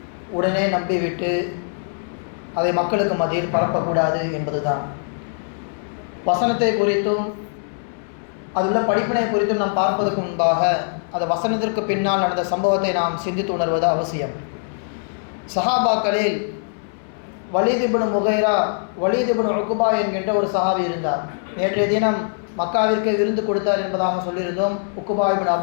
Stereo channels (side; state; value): right; silent; 64 dB below the other